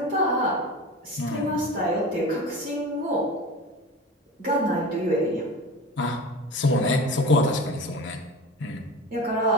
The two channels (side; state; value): both; normal; correlation 0.32